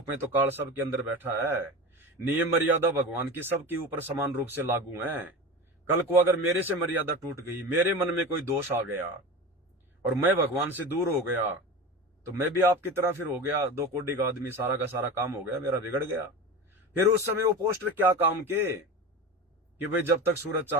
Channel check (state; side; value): normal; both; correlation 0.28